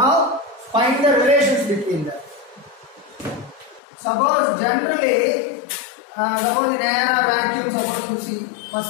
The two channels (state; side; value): drops out; right; at 3.8 s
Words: find the relations between them. Suppose generally, suppose in air or vacuum, suppose you see,